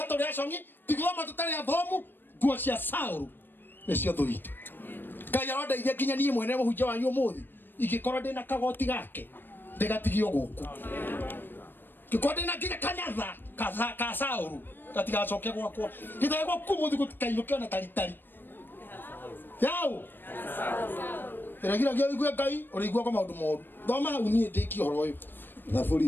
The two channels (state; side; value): late; right; 0.095 ms